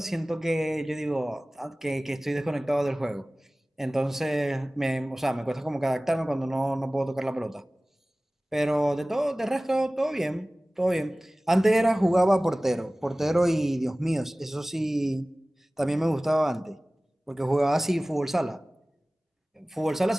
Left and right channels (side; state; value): both; normal; correlation 0.98